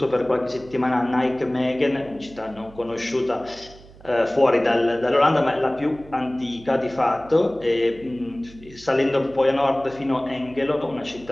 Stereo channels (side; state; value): right; noise; hum, 22 dB below the sound